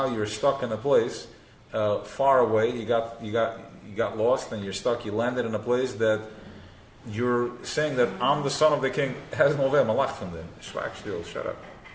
you're stuck in a place far away, you got lost and you're stuck, you landed in a place that you're saying that I'm the son of the king, has no way, malach from them. Shut up.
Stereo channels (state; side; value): identical; both; correlation 1.00